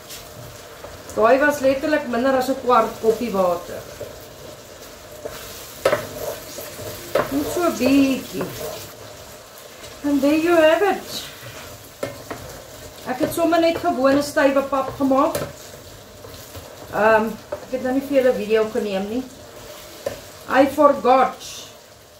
Daai was letterlik minder as 'n kwart koppie water. Net so bietjie. And there you have it. Ek het sommer net gewone stywe pap gemaak. Ek het nou nie vir julle video geneem nie. I forgot.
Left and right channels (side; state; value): both; identical; correlation 1.00